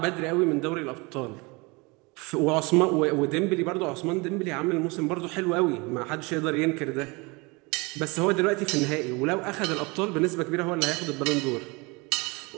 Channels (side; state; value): left; quieter; 26.8 dB